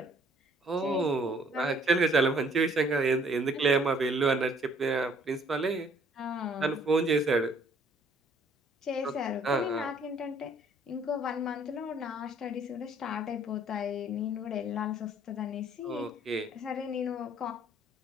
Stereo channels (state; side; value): normal; both; correlation 0.61